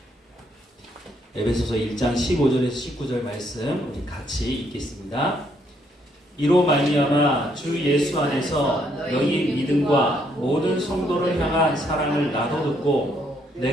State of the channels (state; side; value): normal; both; correlation 0.71